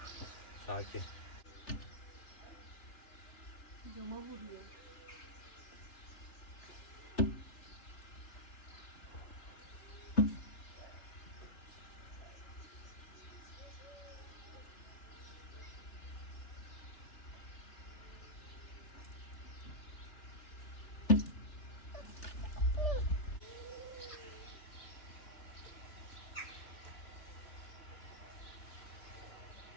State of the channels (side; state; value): right; late; 3.3 ms